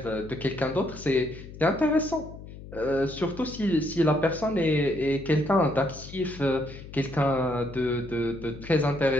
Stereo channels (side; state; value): left; noise; hum, 14 dB below the sound